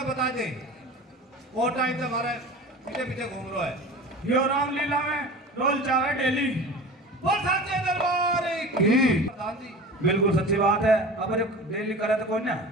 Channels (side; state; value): both; normal; correlation 0.35